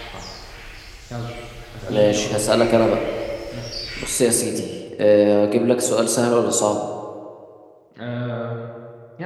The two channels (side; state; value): both; identical; correlation 1.00